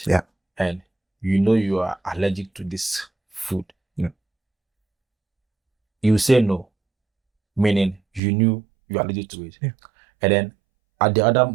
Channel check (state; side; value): drops out; left; at 8.2 s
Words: Yeah. and you are allergic to this food. Yeah. You say no, meaning you knew you are allergic to it. Yeah. And then at the other